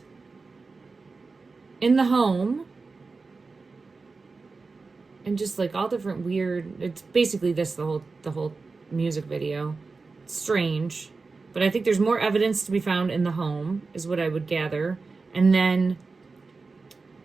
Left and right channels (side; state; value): left; quieter; 4.1 dB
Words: in the home. And just like all different weird, it's basically this, the whole music video. It's strange. But I think there's more evidence to be found in the home, is what I would gather. And then